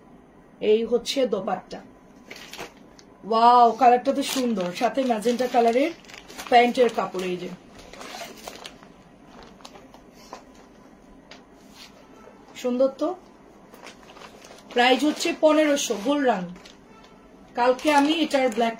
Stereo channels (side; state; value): both; identical; correlation 1.00